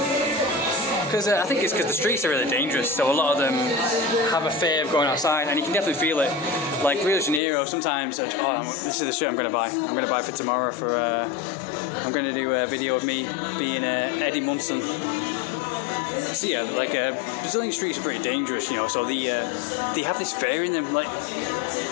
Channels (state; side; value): drops out; right; at 7.4 s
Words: Because I think it's because the streets are really dangerous, so a lot of them have a fear of going outside, and you can definitely feel it. Like Rio de Janeiro, sometimes, this is the shirt I'm going to buy. I'm going to buy for tomorrow for, I'm going to do a video of me being Eddie Munson. So yeah, like Brazilian streets are pretty dangerous, so they have this fear in them. Like